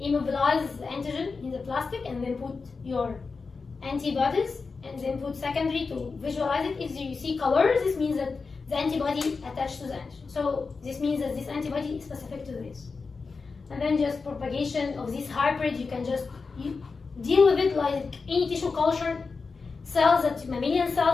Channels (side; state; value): right; quieter; 4.6 dB